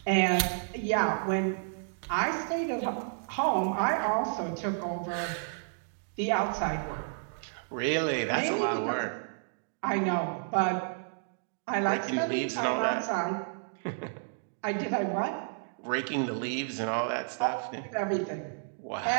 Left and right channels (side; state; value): left; silent; digital silence